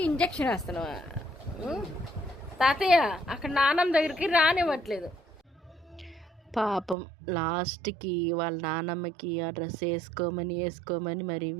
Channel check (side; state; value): left; drops out; at 7.0 s